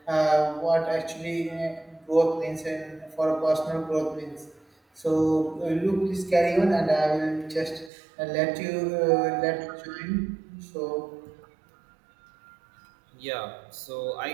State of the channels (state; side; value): drops out; left; at 7.9 s